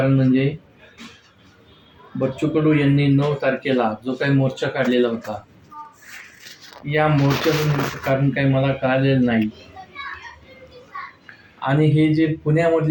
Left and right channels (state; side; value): identical; both; correlation 1.00